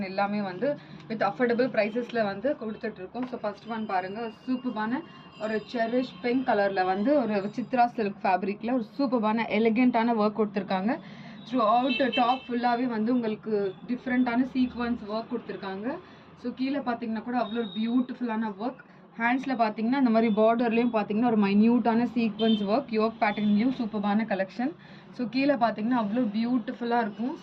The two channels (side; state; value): both; identical; correlation 1.00